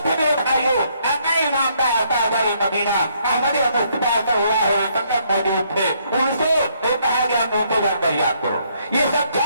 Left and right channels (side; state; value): both; inverted; correlation -0.69